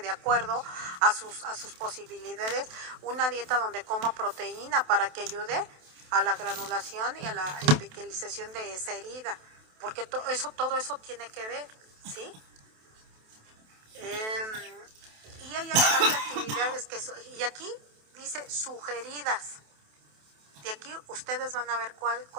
acuerdo a sus posibilidades una dieta donde coma proteína para que ayude a la granulación y a la epitelización de esa herida, porque todo eso tiene que ver, ¿sí? Y hay actividades y aquí dice sugeridas. De aquí ustedes van a ver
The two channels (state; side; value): late; left; 27 ms